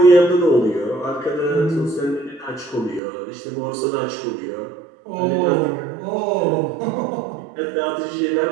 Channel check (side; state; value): left; drops out; at 3.0 s